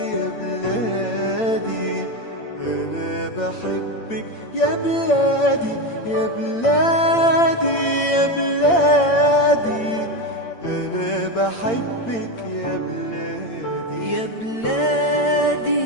يا بلادي أنا بحبك يا بلادي يا بلادي يا بلادي أنا بحبك يا بلادي يا بلادي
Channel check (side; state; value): right; late; 8.8 ms